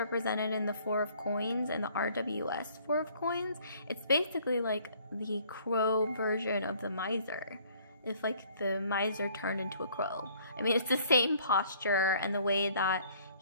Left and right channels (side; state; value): both; inverted; correlation -0.58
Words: in the 4 of coins and the RWS 4 of coins, it's basically like the crow version of the miser. If like the miser turned into a crow. I mean, it's the same posture and the way that